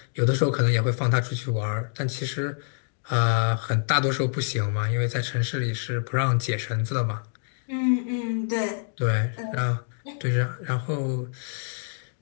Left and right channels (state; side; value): silent; right; digital silence